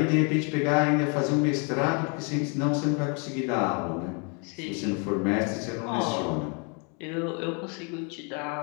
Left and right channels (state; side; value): quieter; right; 35.5 dB